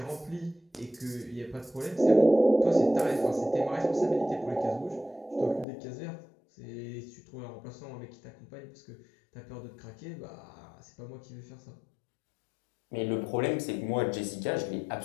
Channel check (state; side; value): drops out; right; at 5.7 s